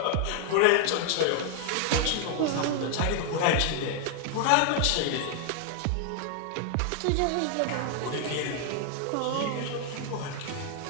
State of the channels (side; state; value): both; different; correlation 0.00